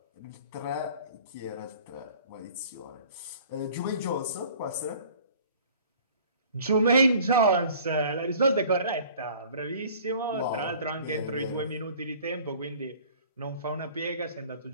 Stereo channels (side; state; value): both; inverted; correlation -0.50